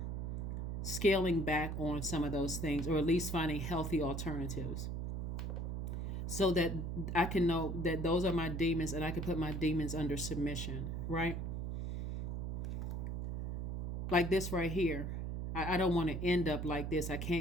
scaling back on some of those things, or at least finding healthy alternatives, so that I can know that those are my demons and I can put my demons under submission, right? Like this right here. I don't want to end up like this. I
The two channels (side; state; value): right; noise; hum, 3 dB below the sound